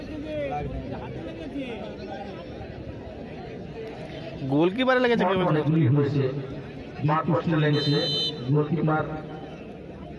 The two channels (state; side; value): identical; both; correlation 1.00